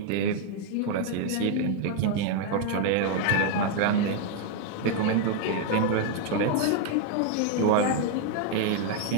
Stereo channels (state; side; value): different; both; correlation 0.01